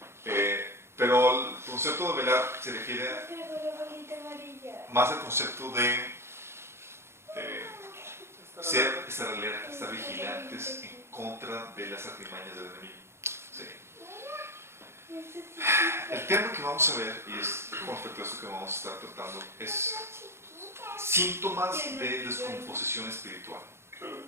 Pero el concepto de velar se refiere más al concepto de estar alerta, estar vigilantes en contra de las artimañas del enemigo. Sí. El tema que vamos a ver, y es con respecto a esto que vamos a estar tratando, es síntomas de descomposición espiritual.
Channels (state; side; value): late; left; 0.12 ms